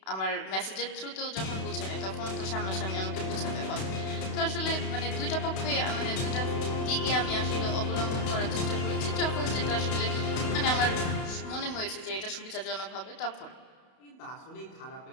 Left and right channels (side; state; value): right; late; 32 ms